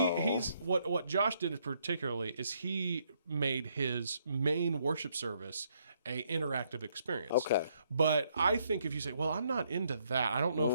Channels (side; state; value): both; inverted; correlation -0.72